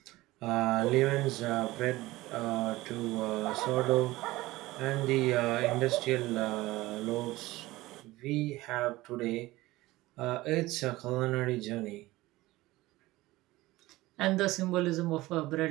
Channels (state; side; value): quieter; left; 18.7 dB